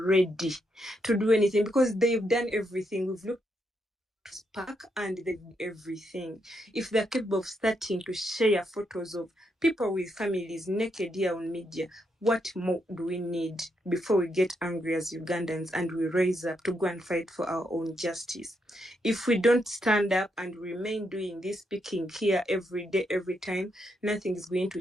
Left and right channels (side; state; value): both; normal; correlation 0.79